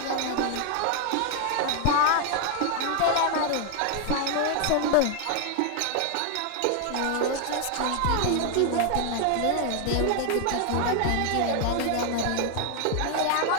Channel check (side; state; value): both; different; correlation 0.00